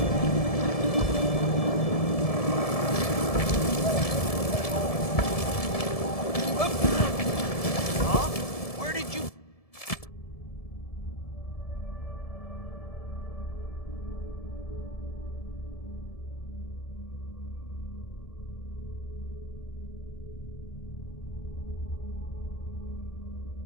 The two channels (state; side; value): late; right; 1.7 ms